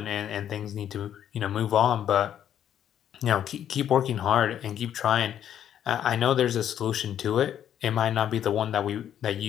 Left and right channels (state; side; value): quieter; right; 10.1 dB